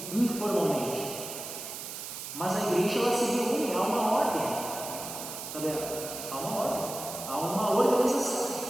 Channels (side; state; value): right; noise; hiss, 8 dB below the sound